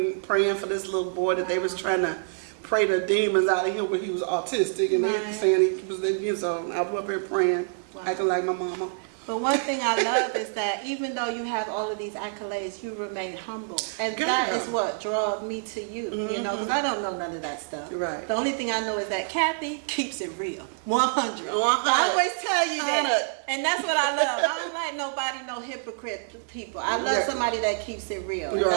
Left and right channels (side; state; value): left; silent; digital silence